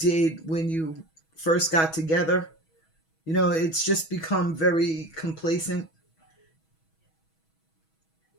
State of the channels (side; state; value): right; late; 6.2 ms